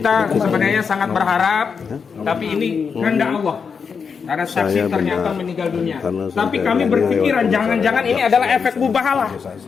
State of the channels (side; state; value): right; quieter; 5.9 dB